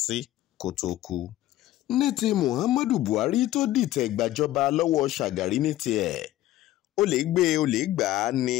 sí kó tó kú. ní ti Muhammadu Buhari tó dìtẹ̀ gbàjọba lọ́wọ́ Shagari ní tiẹ̀ ó lè gbé ó lè gbà á ní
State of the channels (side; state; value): right; quieter; 14.7 dB